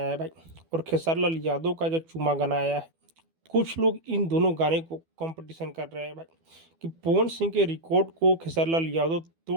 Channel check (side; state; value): left; late; 12 ms